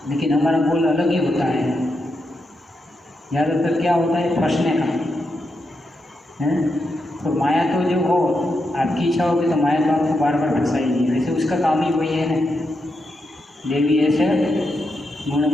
लेकिन हमारा गोल अलग ही होता है। ज़्यादातर क्या होता है? फंसने का है। तो माया तो जो हो, आपकी इच्छा होगी तो माया तो आपको बार बार फंसाएगी। वैसे उसका काम ही वही है ना, देवी ऐसे गुण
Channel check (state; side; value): normal; both; correlation 0.84